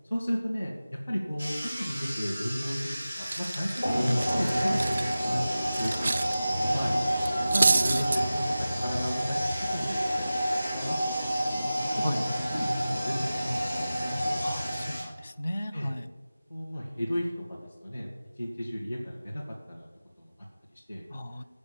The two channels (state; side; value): inverted; both; correlation -0.96